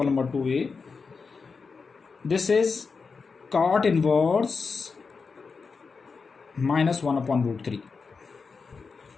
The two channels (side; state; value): right; quieter; 4.9 dB